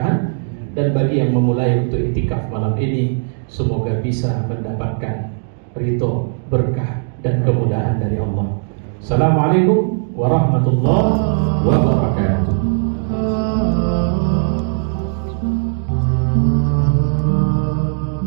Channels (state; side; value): silent; left; digital silence